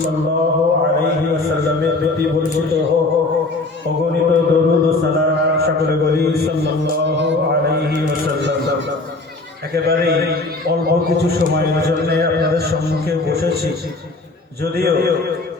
আলাইহি ওয়াসাল্লামের প্রতি বর্ষিত হোক অগণিত দরুদ ও সালাম। সকলে বলি সাল্লাল্লাহু আলাইহি ওয়াসাল্লাম। একেবারে অল্প কিছু সময়ের জন্য আপনাদের সম্মুখে বসেছি, যদিও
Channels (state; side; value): quieter; right; 3.1 dB